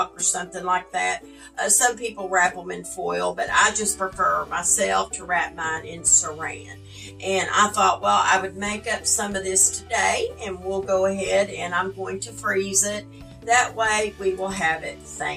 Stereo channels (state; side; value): identical; both; correlation 1.00